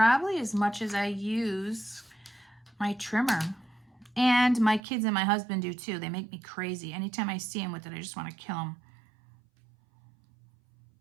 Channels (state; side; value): drops out; left; at 4.8 s